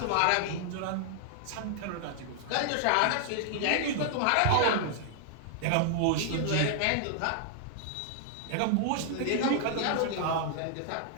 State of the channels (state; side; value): different; both; correlation 0.00